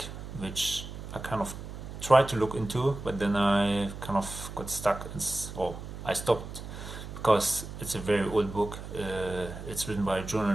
which I kind of tried to look into, but then I kind of got stuck, or I stopped, because it's a very old book. It's written by a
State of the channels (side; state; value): right; noise; hum, 10 dB below the sound